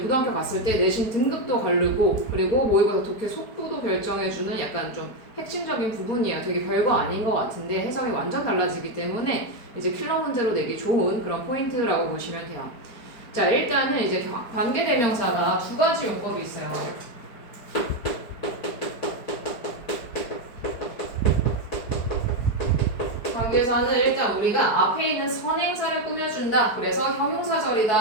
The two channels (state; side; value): late; right; 4.7 ms